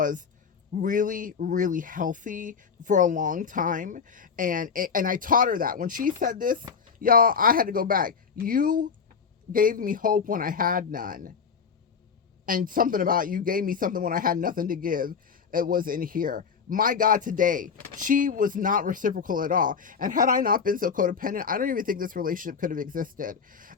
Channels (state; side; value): quieter; right; 6.1 dB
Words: really, really healthy for a long time. And I taught her that. When she said this, y'all, I had to go back. You gave me hope when I had none. And something about you gave me something when I had nothing to give. It was in here. My God, today, she was not reciprocal at all. And had I not been so codependent, I don't even think this relationship could have existed.